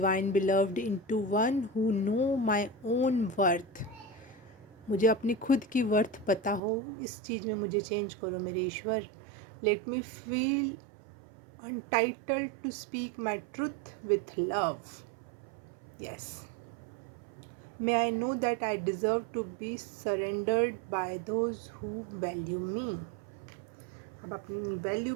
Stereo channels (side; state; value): left; drops out; at 6.6 s